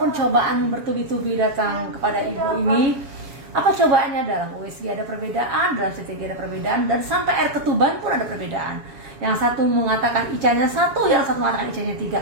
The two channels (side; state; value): left; late; 7.3 ms